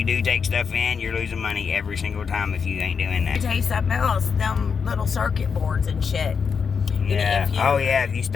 do take stuff in, you're losing money every single time if you ain't doing that. I tell you something else, them little circuit boards and shit. Yeah. If you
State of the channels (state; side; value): quieter; right; 6.1 dB